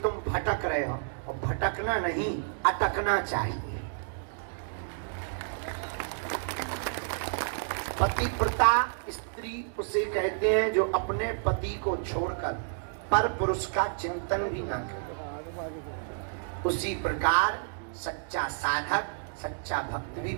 भटक रहे हो, और भटकना नहीं, अटकना चाहिए। पतिव्रता स्त्री उसे कहते हैं जो अपने पति को छोड़कर पर पुरुष का चिंतन भी ना करे। उसी प्रकार सच्चा साधक, सच्चा भक्त भी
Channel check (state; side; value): silent; left; digital silence